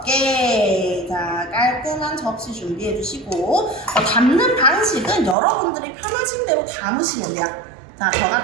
자, 깔끔한 접시 준비해 주시고, 담는 방식은 여러분들이 편하신 대로 담으시면 돼요. 자, 저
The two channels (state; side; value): drops out; left; at 5.4 s